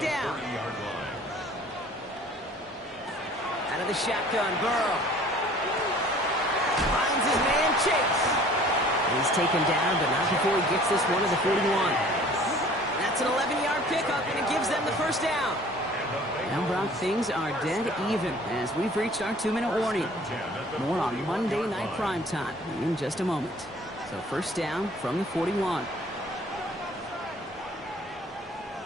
down. Out of the shotgun, Burrow. Finds his man, Chase. He's taken down, but not before he gets this one to the 41. That's an 11-yard pickup, and it gives them the 1st down. Now, Brock, things are dead even as we've reached our 2-minute warning. More on Monday Night Primetime in just a moment. So 1st down from the 41.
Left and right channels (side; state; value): both; normal; correlation 0.51